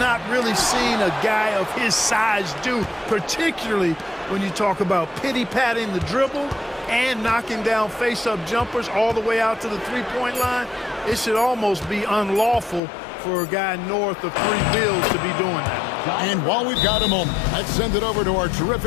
really seen a guy of his size do, particularly when you talk about pity-patting the dribble and knocking down face-up jumpers all the way out to the three-point line. It should almost be unlawful for a guy north of 3 bills to be doing that. And while we've got a moment, let's send it over to our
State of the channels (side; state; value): right; drops out; at 12.8 s